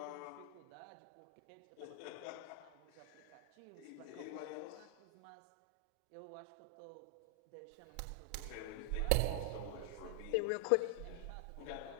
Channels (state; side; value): different; both; correlation 0.00